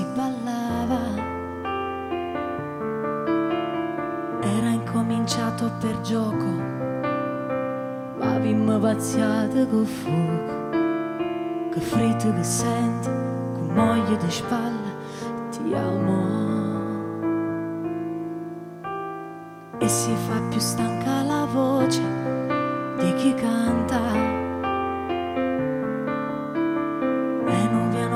ballava. Era incominciato per gioco, ma avevamo pazziato col fuoco, che fritto che sente, con moglie di spalle, ti amo. E si fa più stanca la voce di chi canta, e un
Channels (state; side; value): identical; both; correlation 1.00